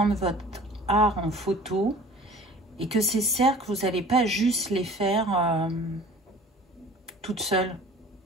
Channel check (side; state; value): both; normal; correlation 0.45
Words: votre art en photo et que ces cercles, vous n'allez pas juste les faire toute seule.